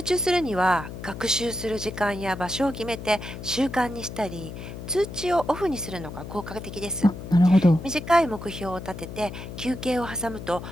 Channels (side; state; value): left; noise; hum, 10 dB below the sound